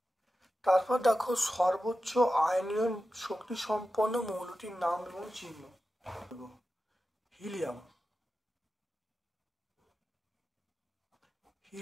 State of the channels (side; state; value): both; normal; correlation 0.93